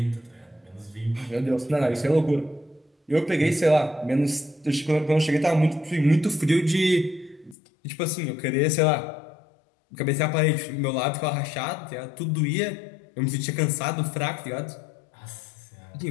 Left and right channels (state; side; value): drops out; right; at 7.6 s